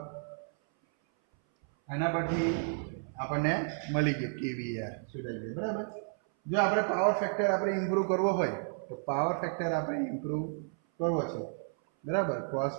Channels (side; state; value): left; silent; 56 dB below the other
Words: આના પરથી આપણને મળી ગયું KVAR શોધાઈ ગયું બરાબર. જો આપણે પાવર ફેક્ટર આપણે ઇમ્પ્રૂવ કરવો હોય તો પાવર ફેક્ટર આપણે ઇમ્પ્રૂવ કરવો છે બરાબર. cos